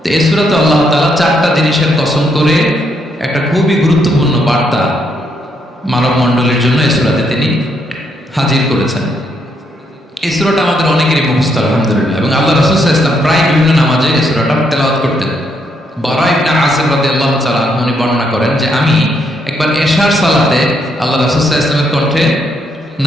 তো এই সূরাতে আল্লাহ তাআলা 4টা জিনিসের কসম করে একটা খুবই গুরুত্বপূর্ণ বার্তা মানব মণ্ডলীর জন্য এই সূরাতে তিনি হাজির করেছেন। এই সূরাটা আমাদের অনেকেরই মুখস্থ আলহামদুলিল্লাহ, এবং আল্লাহ রাসূল সাল্লাল্লাহু আলাইহি ওয়াসাল্লাম প্রায় বিভিন্ন নামাজে এই সূরাটা তেলাওয়াত করতেন। বারা ইবনে আসিম রাদিয়াল্লাহু তাআলা উনি বর্ণনা করেন যে আমি একবার এশার সালাতে আল্লাহ রাসূল সাল্লাল্লাহু আলাইহি ওয়াসাল্লামের কণ্ঠে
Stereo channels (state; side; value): normal; both; correlation 0.75